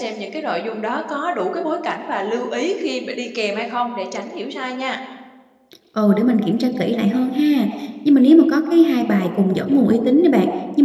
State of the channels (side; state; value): both; identical; correlation 1.00